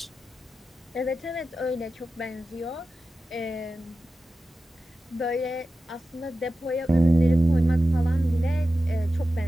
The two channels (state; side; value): normal; both; correlation 0.93